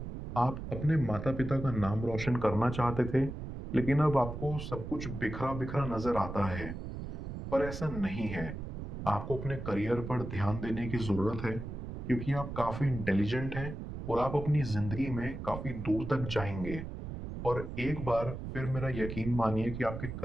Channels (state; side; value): noise; right; rumble, 7 dB below the sound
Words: आप अपने माता पिता का नाम रोशन करना चाहते थे, लेकिन अब आपको सब कुछ बिखरा बिखरा नजर आता है। पर ऐसा नहीं है। आपको अपने करियर पर ध्यान देने की जरूरत है, क्योंकि आप काफी इंटेलिजेंट हैं और आप अपनी जिंदगी में काफी दूर तक जाएंगे। और एक बार फिर मेरा यकीन मानिए कि आपके